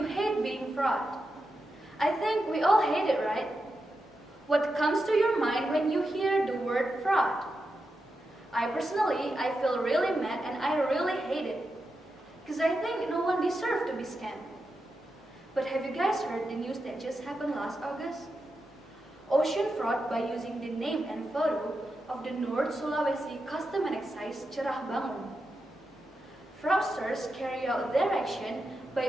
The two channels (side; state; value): both; normal; correlation 0.88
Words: hate being fraud. I think we all hate it, right? What comes to your mind when you hear the word fraud? I feel really mad and I really hate it. Because I think no one deserves to be scammed. But have you guys heard the news that just happened last August? Ocean fraud by using the name and photo of the North Sulawesi Custom and Excise Cerah Bangun. Fraudsters carry out their action